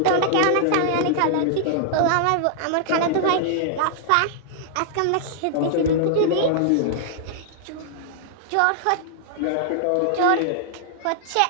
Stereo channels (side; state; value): both; different; correlation -0.01